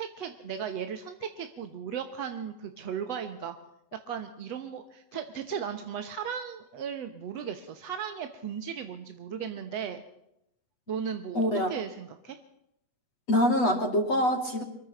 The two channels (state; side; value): late; right; 8.1 ms